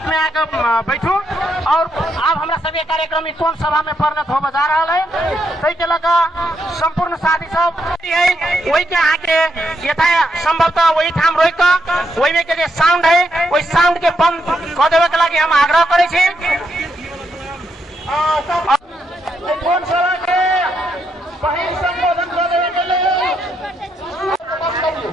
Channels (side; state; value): both; normal; correlation 0.79